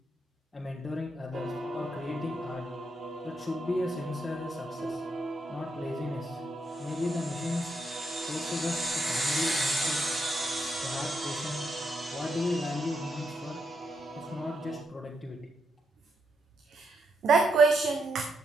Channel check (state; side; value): normal; both; correlation 0.80